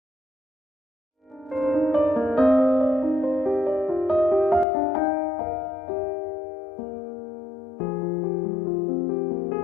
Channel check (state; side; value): drops out; right; at 4.7 s